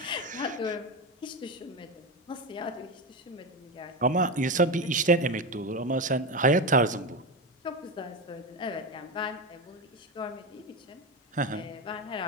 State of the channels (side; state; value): both; normal; correlation 0.17